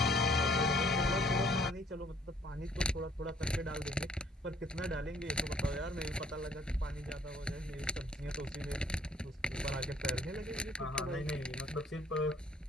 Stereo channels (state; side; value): normal; both; correlation 0.60